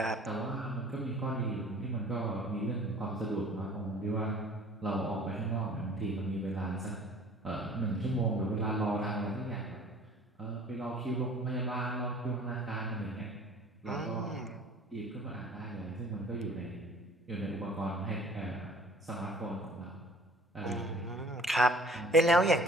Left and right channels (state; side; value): normal; both; correlation 0.49